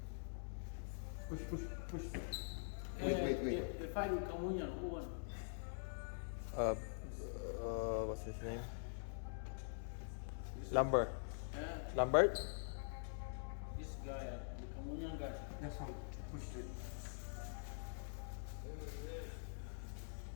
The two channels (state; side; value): silent; right; digital silence